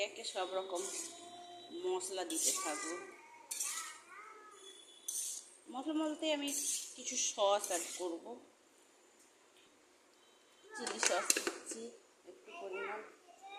একে সব রকম মশলা দিতে থাকবো। মশলা বলতে আমি কিছু সস অ্যাড করব। চিলি সস দিচ্ছি একটু পরিমাণ,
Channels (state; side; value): identical; both; correlation 1.00